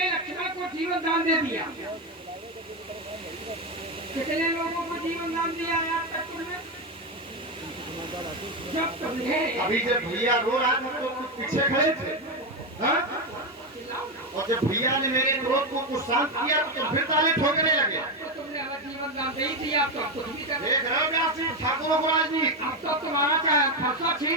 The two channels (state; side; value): normal; both; correlation 0.10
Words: लक्ष्मण को जीवन दान दे दिया। कितने लोगों को जीवन दान दिया याद तक तुमने? जब तुमने अभी जब भैया रो रहा था तो कुछ पीछे खड़े थे, हाँ? और जब भैया ने मेरे क्रोध को कुछ शांत किया तो फिर ताले ठोकने लगे। तो तुमने हमें जीवन दान दे ही दिया, अब तो कुछ भी कर देख रहे हो व्यासी ठाकुरों को राजनीति। अब तो तुम्हारा चाहे फैसला